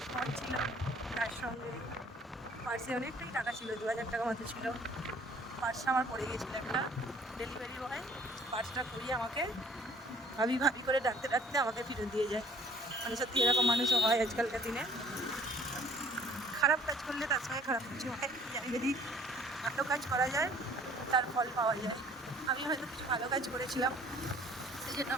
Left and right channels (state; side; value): normal; both; correlation 0.56